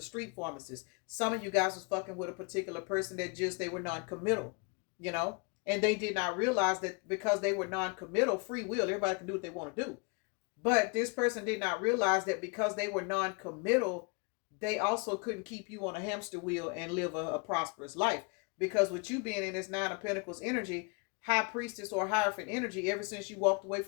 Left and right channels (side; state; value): right; quieter; 32.6 dB